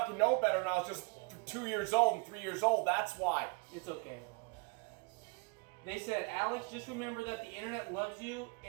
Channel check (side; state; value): left; quieter; 30.6 dB